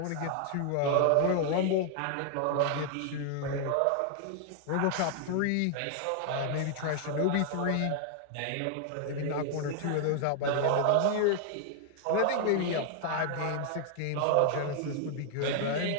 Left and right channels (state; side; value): different; both; correlation 0.00